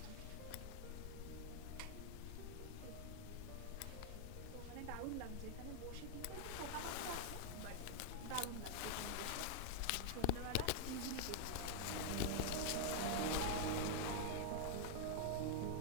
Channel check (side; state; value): both; different; correlation 0.00